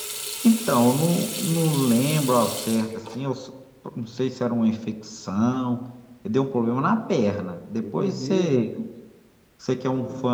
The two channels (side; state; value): both; identical; correlation 1.00